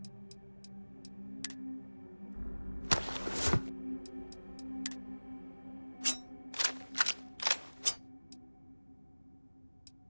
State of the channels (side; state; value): both; inverted; correlation -1.00